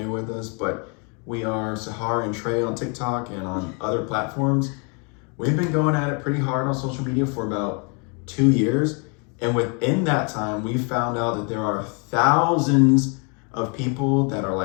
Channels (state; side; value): quieter; right; 35.5 dB